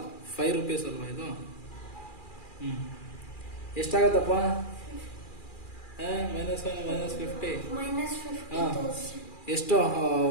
₹5 ಅಲ್ವಾ ಇದು? ಎಷ್ಟಾಗತ್ತಪ್ಪ? -50. ಎಷ್ಟು?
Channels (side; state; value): right; late; 2.4 ms